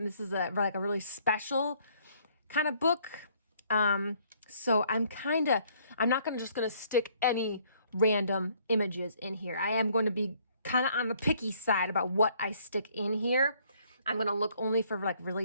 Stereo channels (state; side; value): inverted; both; correlation -0.64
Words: this is like a really special kind of book. So I'm not just gonna stick any random images in here. I am going to be kind of on the picky side about what I stick in here. I'm gonna look only for like